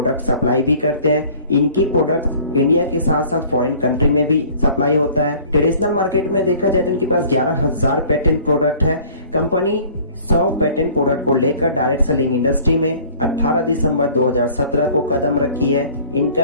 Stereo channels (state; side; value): inverted; both; correlation -0.50